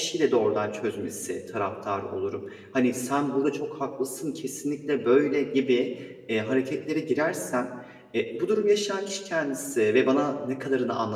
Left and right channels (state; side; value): identical; both; correlation 1.00